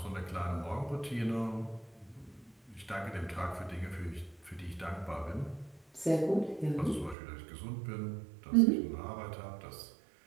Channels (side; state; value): left; drops out; at 7.2 s